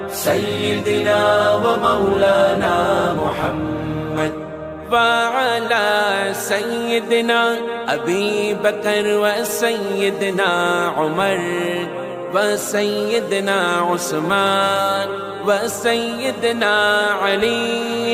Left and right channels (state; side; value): identical; both; correlation 1.00